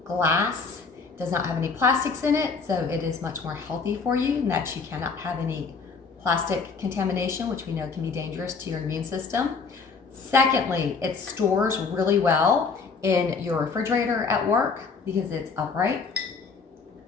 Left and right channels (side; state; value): right; quieter; 4.9 dB